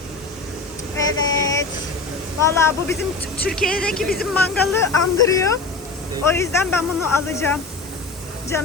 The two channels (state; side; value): quieter; right; 3.9 dB